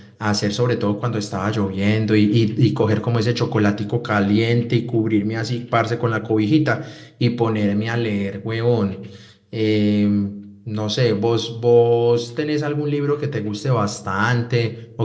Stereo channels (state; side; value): identical; both; correlation 1.00